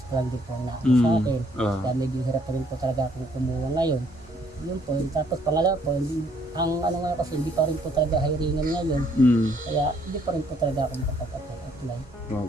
pa lang din po na sa akin. Kaya medyo hirap pa rin po talaga akong kumuha ngayon. Yun po. Tapos pangalawa po, ang ano nga kasi, hindi pa rin po talaga hiringan ngayon. Kaya hindi pa rin po talaga ako makapag-apply.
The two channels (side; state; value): both; normal; correlation 0.66